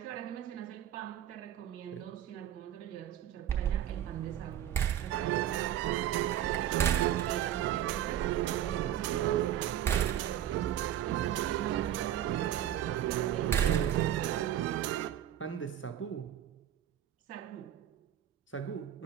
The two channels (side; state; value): left; quieter; 11.3 dB